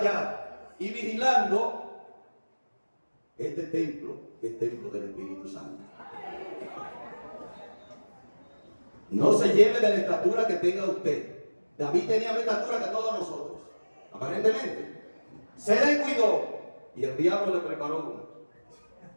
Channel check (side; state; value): both; inverted; correlation -1.00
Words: y vigilando este templo, que es templo del Espíritu Santo. No se lleve de la estatura que tenga usted. David tenía más estatura que todos nosotros, aparentemente. Se descuidó y el diablo le preparó uno.